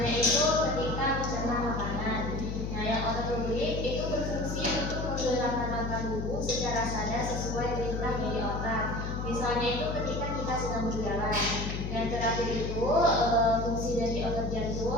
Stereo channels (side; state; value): left; noise; hum, 4 dB below the sound